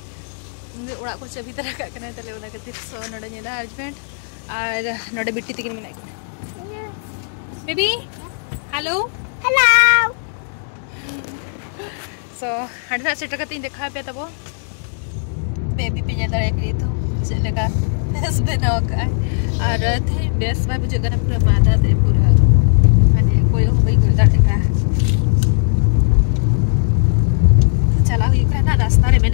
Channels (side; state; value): right; silent; digital silence